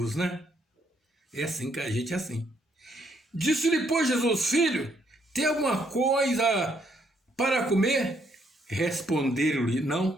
né? É assim que a gente é assim. Disse-lhe, pois, Jesus: filho, tem alguma coisa para comer? Responderam-lhe:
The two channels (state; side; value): normal; both; correlation 0.72